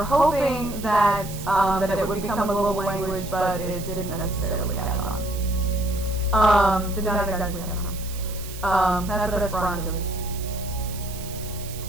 hoping that it would become a global language, but it didn't necessarily catch on. Did not exactly catch on. That's what Esperanto is.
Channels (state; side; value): noise; right; hiss, 13 dB below the sound